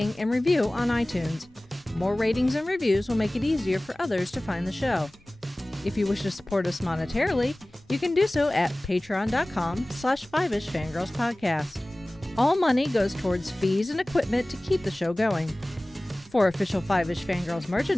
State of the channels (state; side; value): normal; both; correlation 0.98